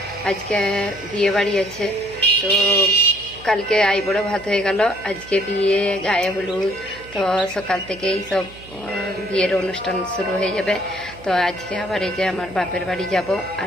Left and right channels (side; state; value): right; noise; hum, 19 dB below the sound